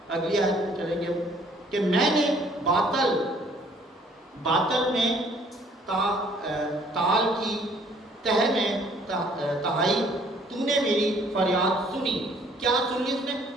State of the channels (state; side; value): normal; both; correlation 0.60